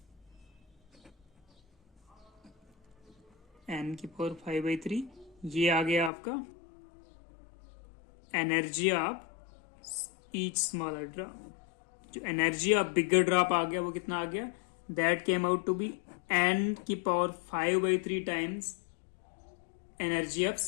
n की पावर 5/3, ये आ गया आपका energy of each smaller drop. जो एनर्जी ऑफ बिगर ड्रॉप आ गया वो कितना आ गया, that came out to be n की power 5/3 times energy of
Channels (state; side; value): drops out; right; at 6.1 s